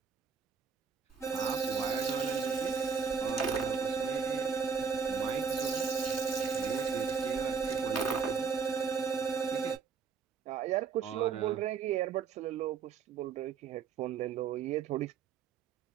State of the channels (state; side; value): quieter; left; 5.9 dB